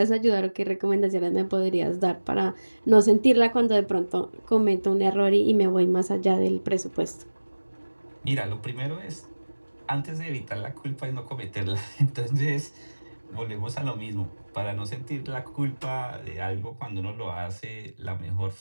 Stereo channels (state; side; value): inverted; both; correlation -1.00